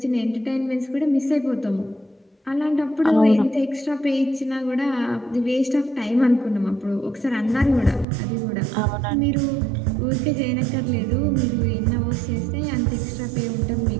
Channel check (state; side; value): drops out; left; at 8.1 s